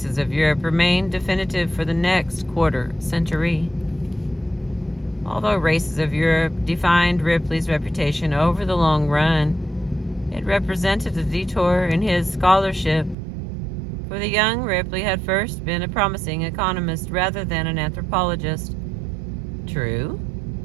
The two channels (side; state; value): left; drops out; at 13.2 s